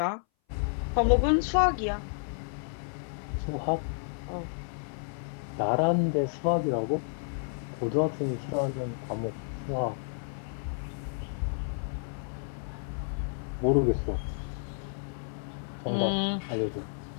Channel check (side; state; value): right; silent; 57 dB below the other